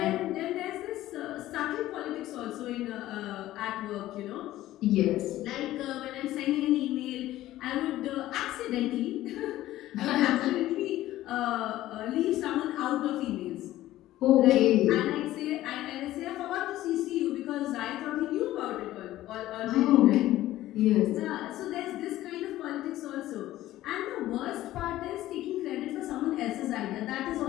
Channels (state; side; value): quieter; right; 15.0 dB